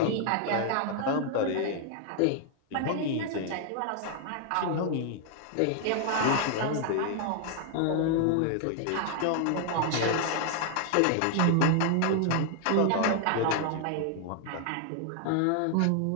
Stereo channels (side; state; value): both; different; correlation 0.00